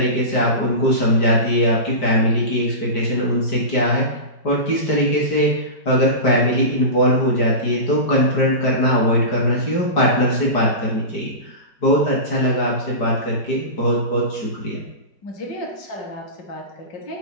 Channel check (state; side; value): late; right; 5.0 ms